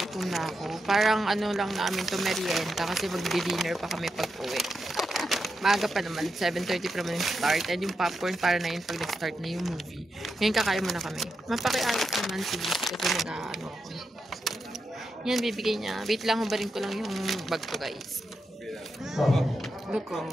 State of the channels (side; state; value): both; normal; correlation 0.86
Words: na ako. Parang ano lang namin to merienda kasi magdi-dinner pa kami pag uwi. Maaga pa naman, 7:30 pa naman yung start. And yung popcorn para na yun pag nag-start na yung movie. Ngayon kakain muna kami. Mapakiayos naman si Liz kasi nag-ano ako. Yan, bibigay niya. Wait lang, hubarin ko lang yung bag ko, guys. Look,